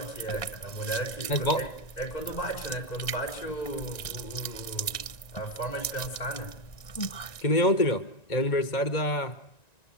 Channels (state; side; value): late; right; 1.9 ms